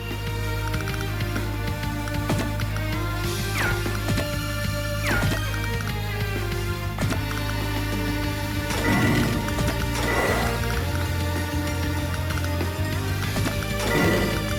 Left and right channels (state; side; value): identical; both; correlation 1.00